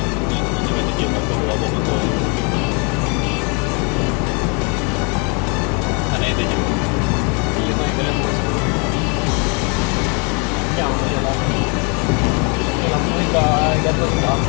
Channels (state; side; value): quieter; right; 34.4 dB